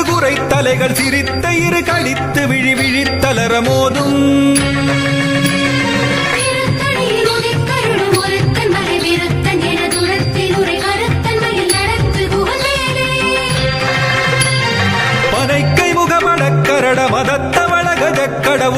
குறை தலைகள் சிரித்த இரு கழித்து விழி விழித்தளர மோதும். பனைக்கை முகமடக்கரட மதத்த வளகஜ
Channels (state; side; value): noise; right; rumble, 24 dB below the sound